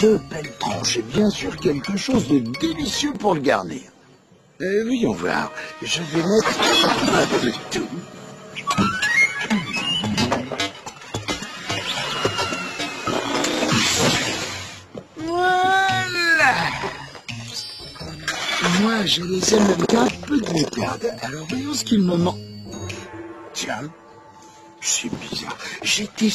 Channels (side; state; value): both; identical; correlation 1.00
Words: belles tranches et bien sûr quelque chose de délicieux pour le garnir. Voyons voir, je vais mettre un peu de tout. Voilà. Moi, je les aime avec un peu de moutarde. Alors voyons ce qu'il me manque. Tiens, c'est bizarre. J'étais